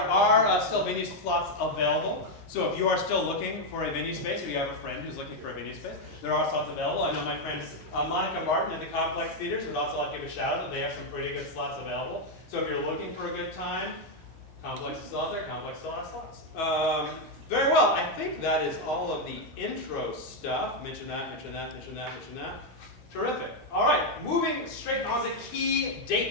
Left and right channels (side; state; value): both; normal; correlation 0.02